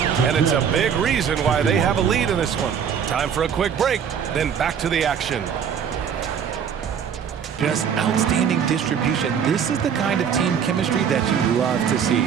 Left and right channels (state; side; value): quieter; left; 7.7 dB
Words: and it's a big reason why they have a lead in this one. Time for a quick break, then back to the action. Just outstanding distribution. This is the kind of team chemistry that you love to see.